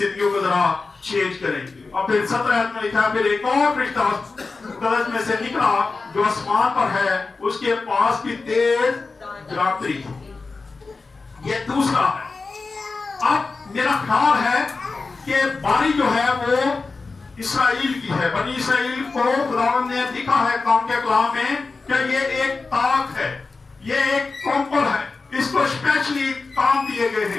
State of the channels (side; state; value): right; quieter; 4.0 dB